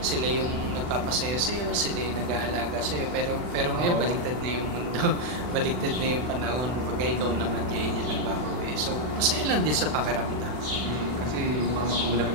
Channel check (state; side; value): late; left; 40 ms